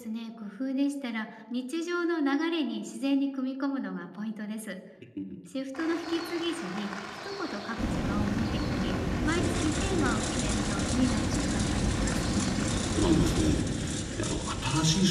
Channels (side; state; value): both; identical; correlation 1.00